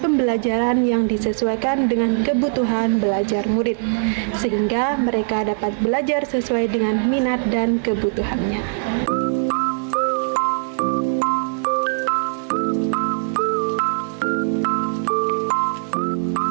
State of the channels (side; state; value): left; silent; digital silence